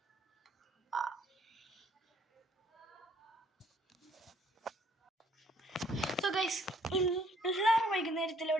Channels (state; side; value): normal; both; correlation 0.64